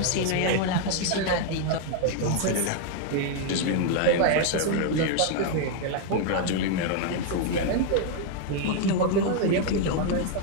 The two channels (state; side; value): different; both; correlation 0.00